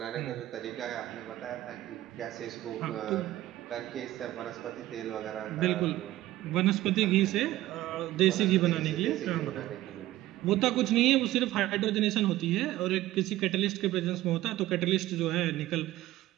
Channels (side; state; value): left; quieter; 15.6 dB